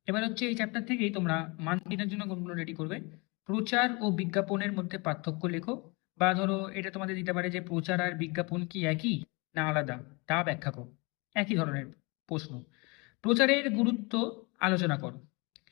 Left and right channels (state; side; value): quieter; right; 28.3 dB